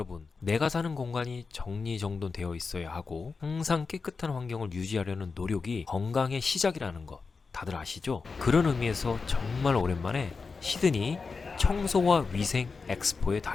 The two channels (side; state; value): right; quieter; 4.6 dB